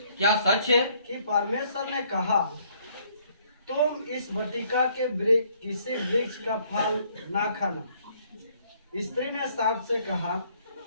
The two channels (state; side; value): inverted; both; correlation -0.65